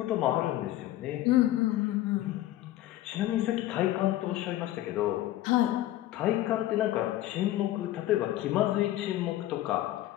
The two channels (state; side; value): quieter; right; 14.6 dB